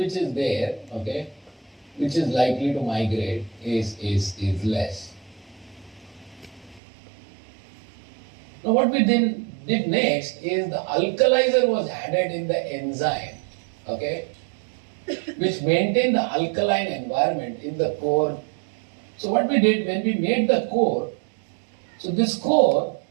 is there, okay, which is likely to migrate is less. Now what we did next is the alkalizer was added in the enzyme, okay, which maintained the alkaline environment in the core. So what we did when we made the core, so this core,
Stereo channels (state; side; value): drops out; left; at 6.8 s